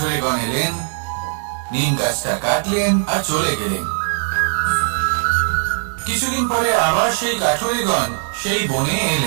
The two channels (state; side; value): silent; left; digital silence